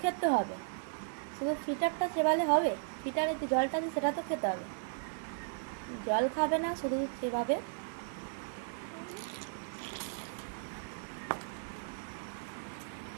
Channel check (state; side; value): silent; left; digital silence